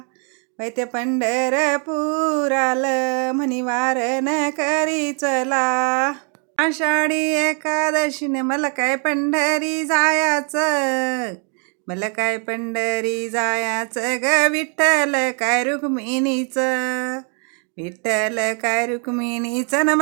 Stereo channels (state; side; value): quieter; left; 39.4 dB